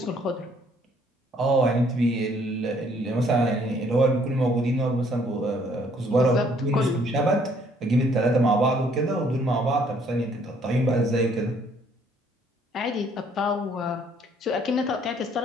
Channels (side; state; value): both; normal; correlation 0.63